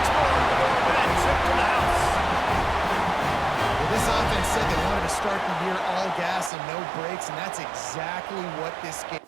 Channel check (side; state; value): left; drops out; at 6.5 s